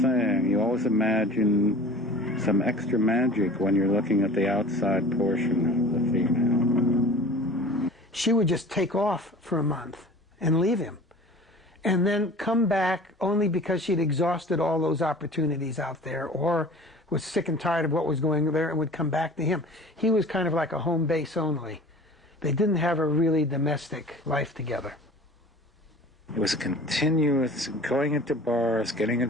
saying you always imagine some extra magic when you're looking at the outside portion of the female. She would just take off for a month and leave him, and then come back only because she'd exhausted all those opportunities out there, or was sick and tired of what was going there and would come back to him. He was kind of like a home base only. They didn't have a really domestic life together. It was a continuous going into bars, getting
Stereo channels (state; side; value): normal; both; correlation 0.42